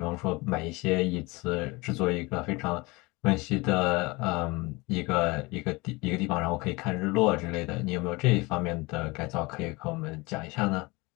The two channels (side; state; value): right; quieter; 24.4 dB